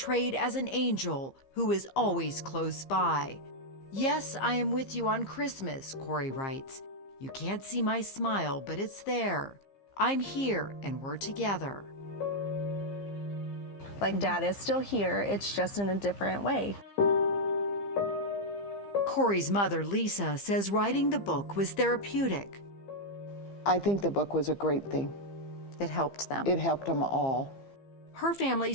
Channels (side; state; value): right; late; 15 ms